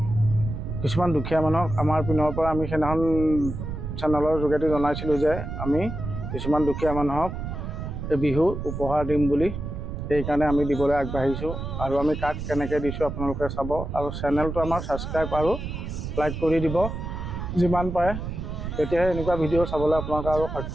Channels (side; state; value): right; noise; rumble, 6 dB below the sound